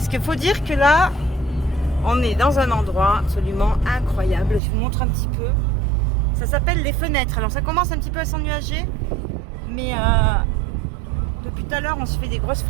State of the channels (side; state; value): left; drops out; at 4.6 s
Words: qu'il faut dire que là, on est dans un endroit absolument incroyable. Je vous montre un petit peu. Ça s'appelle les fenêtres. Alors ça commence un petit peu à s'ennuager, mais depuis tout à l'heure, on se fait des grosses